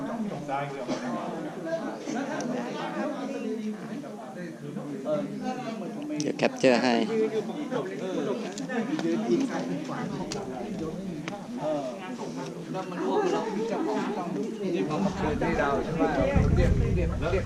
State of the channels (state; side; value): identical; both; correlation 1.00